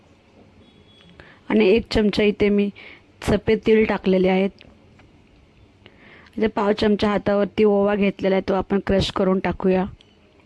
आणि 1 चमचा इथे मी सफेद तीळ टाकलेले आहेत। इथे पाव चमचा हातावरती ओवा घेतलेला आहे, तो आपण क्रश करून टाकूया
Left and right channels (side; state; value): both; identical; correlation 1.00